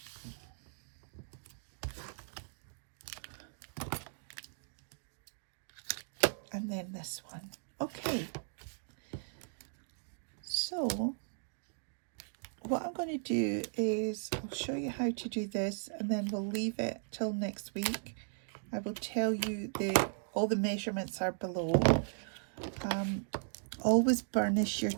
And then this one. Okay. So what I'm going to do is I'll show you how to do this, and then we'll leave it till next week. I will tell you all the measurements are below. Always burnish your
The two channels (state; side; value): silent; left; digital silence